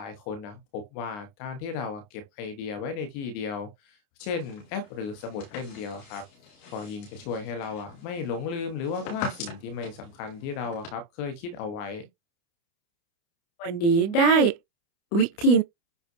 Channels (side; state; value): right; late; 29 ms